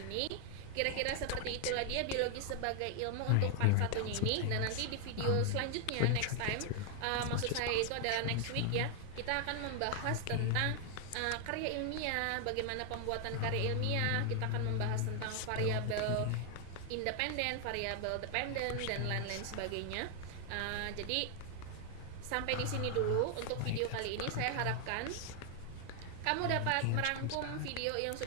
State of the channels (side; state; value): both; different; correlation 0.00